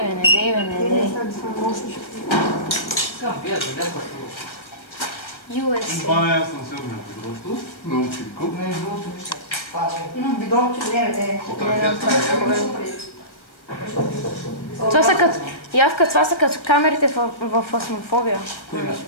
Искам, пия, да гледам USA. Това не, аз съм сигурен. Просто научим куп. не е другото вижте. Имам бидон, че не. От ракета Това са като камерите в фасмофобия.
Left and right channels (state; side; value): late; right; 1.4 ms